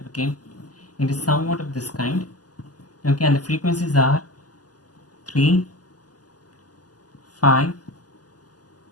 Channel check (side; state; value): right; late; 0.68 ms